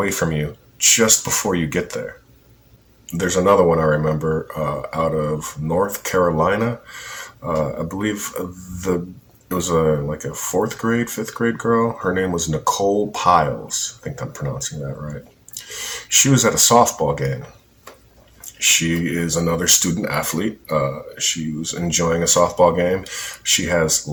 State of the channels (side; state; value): both; identical; correlation 1.00